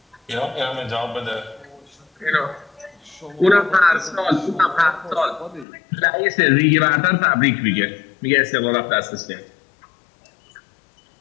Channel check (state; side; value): drops out; right; at 5.7 s